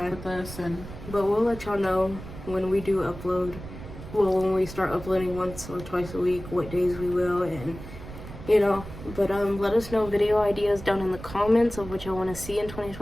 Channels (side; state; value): right; noise; rumble, 13 dB below the sound